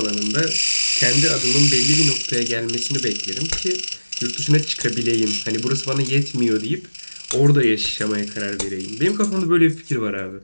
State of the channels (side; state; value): both; inverted; correlation -1.00